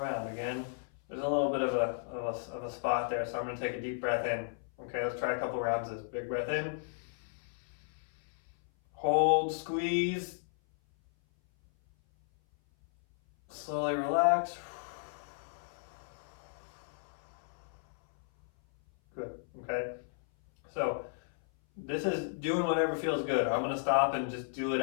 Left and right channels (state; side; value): silent; right; 55 dB below the other